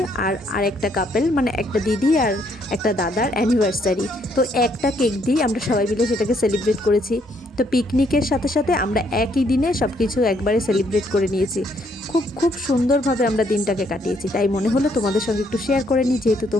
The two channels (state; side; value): normal; both; correlation 0.70